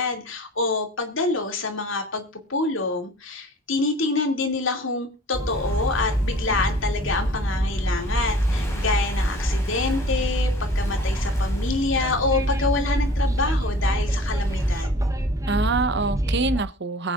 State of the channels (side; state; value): both; normal; correlation 0.45